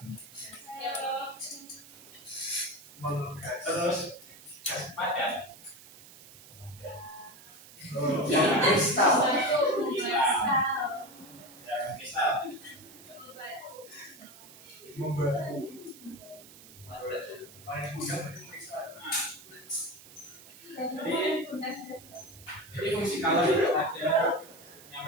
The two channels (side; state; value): right; noise; hiss, 19 dB below the sound